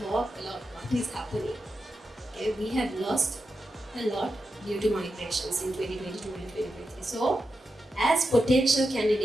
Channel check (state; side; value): normal; both; correlation 0.89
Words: talk a lot what is happening. Okay? We have lost a lot due to migrations in 2022 and 2023. So, as potential